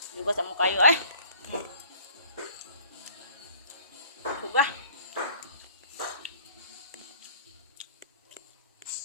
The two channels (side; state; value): both; inverted; correlation -0.51